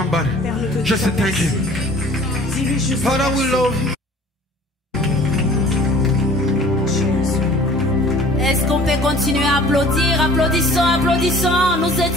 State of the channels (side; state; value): both; normal; correlation 0.49